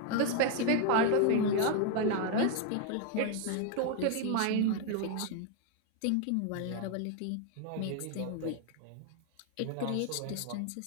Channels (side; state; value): both; different; correlation 0.01